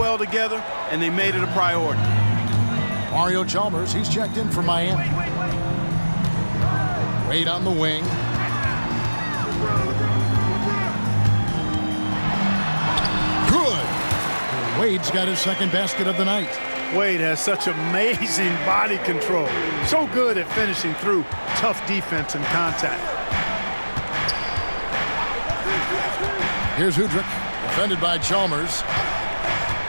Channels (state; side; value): inverted; both; correlation -1.00